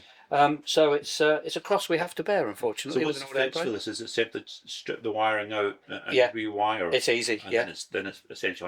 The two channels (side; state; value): both; identical; correlation 1.00